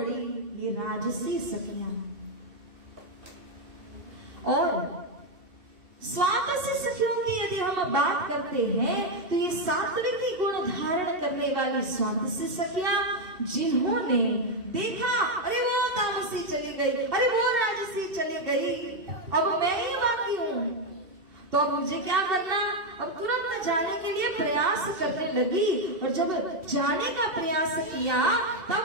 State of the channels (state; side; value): late; left; 2.7 ms